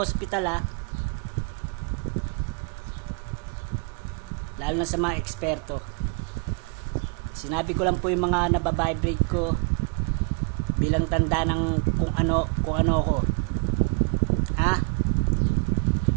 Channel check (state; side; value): quieter; left; 36.0 dB